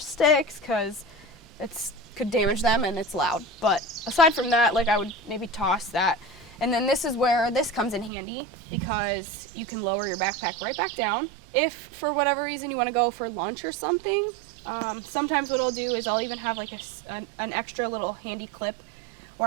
because it's could damage them and it's loud. But aside from that, like, I would maybe toss that. And then this is where this comes in handy, because you can lower your backpack right back down. If for whatever reason you want to go for lunch or something, sometimes what I'll do is I'll even have like an extra little handy clip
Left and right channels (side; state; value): left; drops out; at 8.1 s